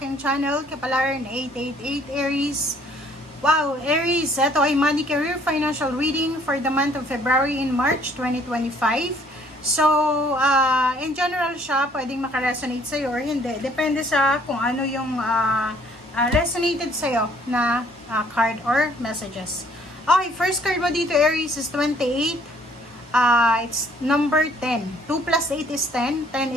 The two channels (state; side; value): normal; both; correlation 0.60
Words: aking channel, Kapalaran 888 Aries. Wow, Aries! Ito ay Money, Career, Financial Reading for the month of February and March 2025. So, in general siya, pwedeng makaresonate sa'yo or hindi. Depende sa kung ano yung resonated sa'yo na card or messages. Okay, first card mo dito Aries is 28. It's number 10. 2 plus 8 is 10. 10